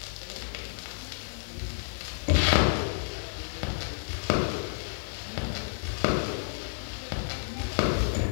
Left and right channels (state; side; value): silent; right; digital silence